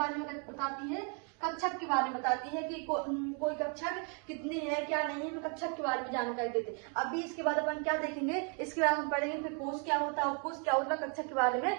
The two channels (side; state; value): left; quieter; 38.7 dB